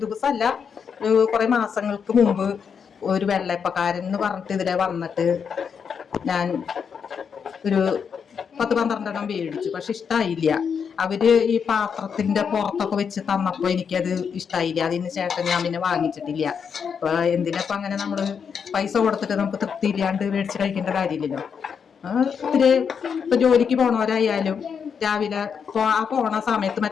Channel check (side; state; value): right; quieter; 6.7 dB